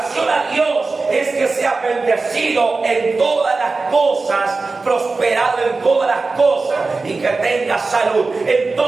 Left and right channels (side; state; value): left; quieter; 3.8 dB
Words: a Dios es que sea bendecido en todas las cosas, prosperado en todas las cosas y que tenga salud.